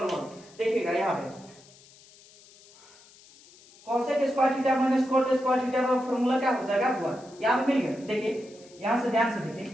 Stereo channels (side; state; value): left; noise; hiss, 24 dB below the sound